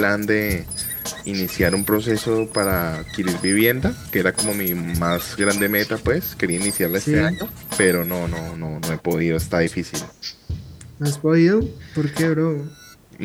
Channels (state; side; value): identical; both; correlation 1.00